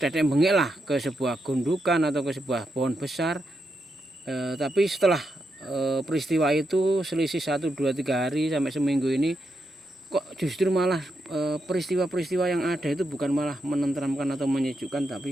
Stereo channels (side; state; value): both; normal; correlation 0.83